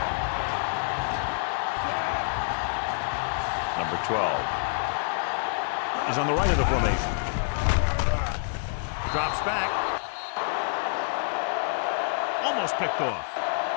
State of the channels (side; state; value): right; silent; digital silence